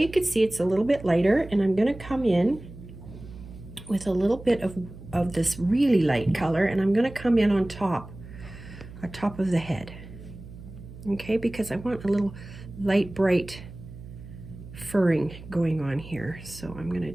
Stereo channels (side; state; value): right; noise; hum, 15 dB below the sound